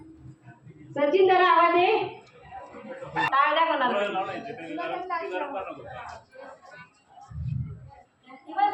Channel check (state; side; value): identical; both; correlation 1.00